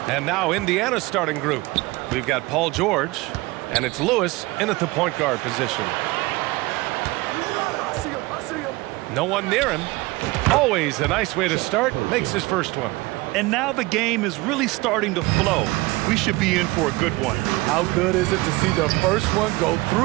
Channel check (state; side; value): quieter; left; 21.9 dB